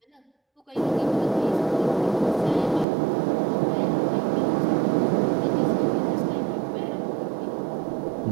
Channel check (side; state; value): left; drops out; at 2.9 s